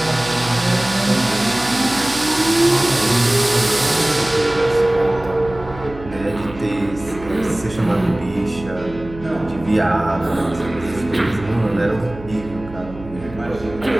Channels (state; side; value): noise; right; hum, 15 dB below the sound